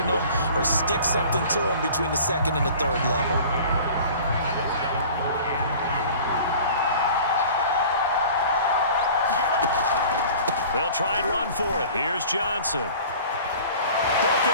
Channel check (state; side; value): inverted; both; correlation -0.44